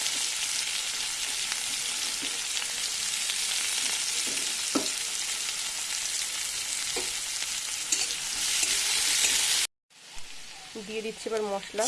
দিয়ে দিচ্ছি এবার মশলা,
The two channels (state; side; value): identical; both; correlation 1.00